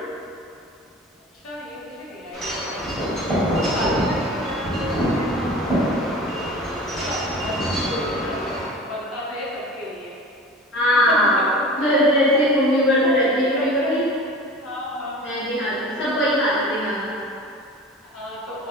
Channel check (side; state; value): both; normal; correlation 0.38